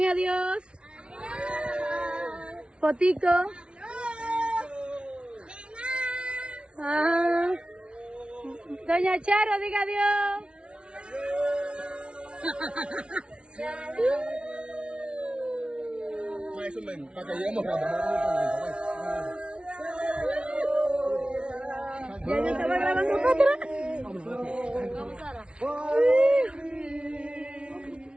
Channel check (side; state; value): left; late; 0.058 ms